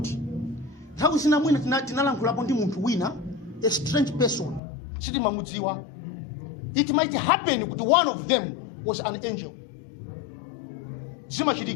Nthawi zina mwina tinalankhulapo ndi munthu wina, a strange person. Sitimamudziwa. It might happen kuti one of them was an angel.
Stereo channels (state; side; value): drops out; right; at 4.6 s